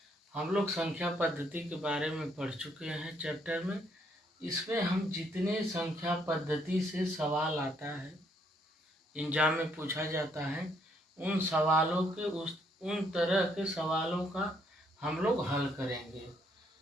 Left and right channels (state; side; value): normal; both; correlation 0.70